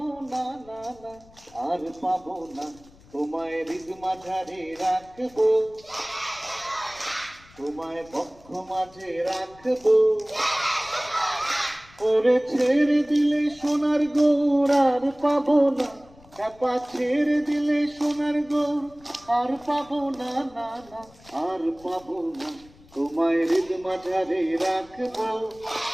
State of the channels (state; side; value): noise; left; rumble, 25 dB below the sound